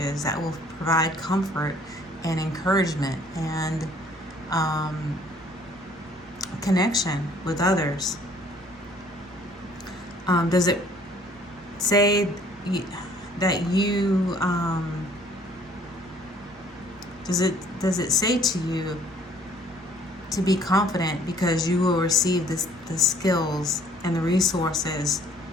that will provide comfort and encouragement and connection with others? Does it say that you does it say to you to be confident because you will receive the skills and the resources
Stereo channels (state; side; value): normal; both; correlation 0.58